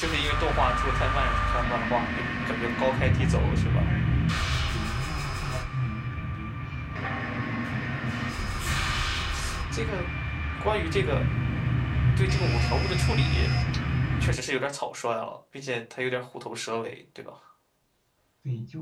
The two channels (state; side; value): identical; both; correlation 1.00